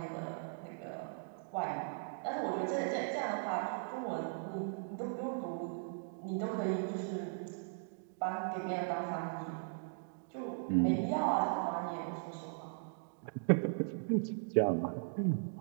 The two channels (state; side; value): silent; left; digital silence